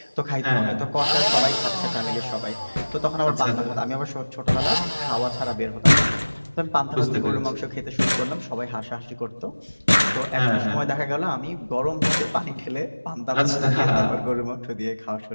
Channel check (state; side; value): inverted; both; correlation -1.00